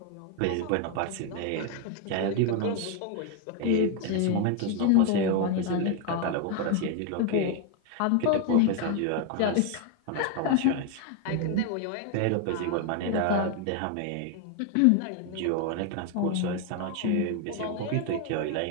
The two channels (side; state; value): both; different; correlation 0.01